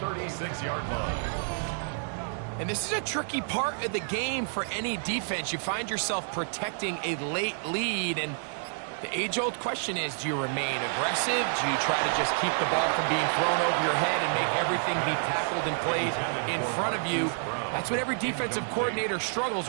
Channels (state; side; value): silent; left; 59 dB below the other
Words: line. And this is a tricky part of the game for any defense. You find yourself protecting a late lead, and the age-old question is, do you remain aggressive? Do you try to just keep the ball from being thrown over your head and make everything be tackled and played in front of you? That's what every defensive coordinator